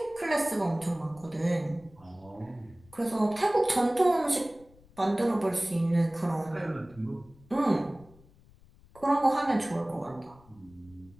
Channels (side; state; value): left; noise; rumble, 26 dB below the sound